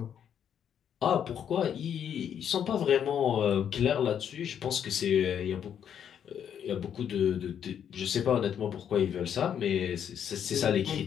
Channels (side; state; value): right; quieter; 8.8 dB